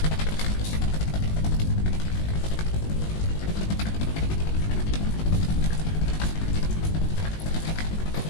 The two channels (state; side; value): late; right; 19 ms